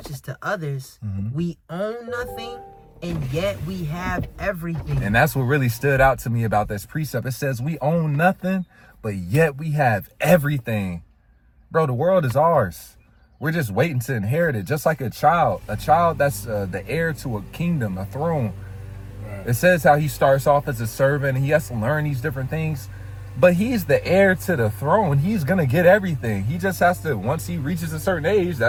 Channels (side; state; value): both; identical; correlation 1.00